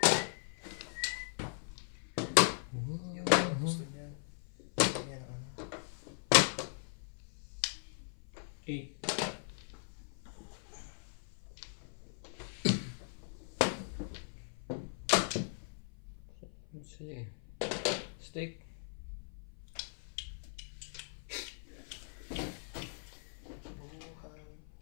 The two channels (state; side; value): silent; right; 52 dB below the other